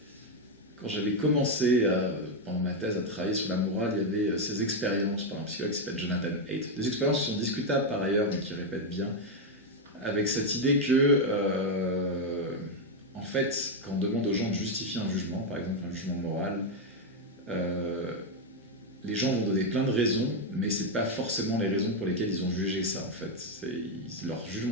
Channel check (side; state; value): both; normal; correlation 0.03